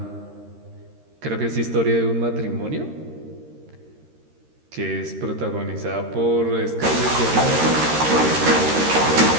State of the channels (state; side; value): late; left; 13 ms